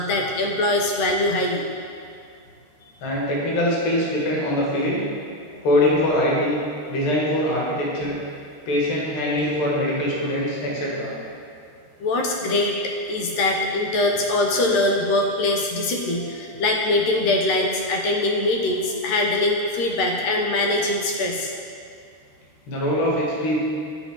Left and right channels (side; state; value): right; late; 13 ms